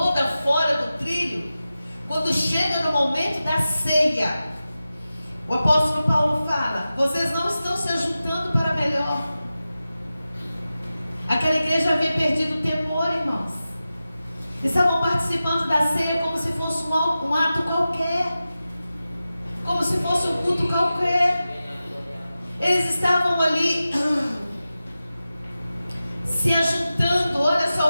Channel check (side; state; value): both; inverted; correlation -0.94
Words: fora do trilho. Quando chega no momento da ceia, o apóstolo Paulo fala: vocês não estão se ajuntando para melhor. Aquela igreja havia perdido o temor, irmãos. Estavam participando da ceia como se fosse um ato qualquer, como se fosse um culto qualquer. Eles estavam ali se ajuntando. Olha